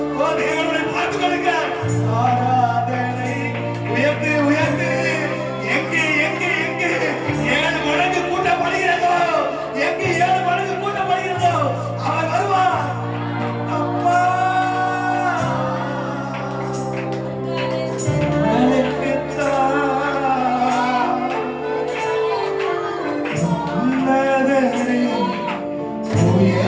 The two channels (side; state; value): both; identical; correlation 1.00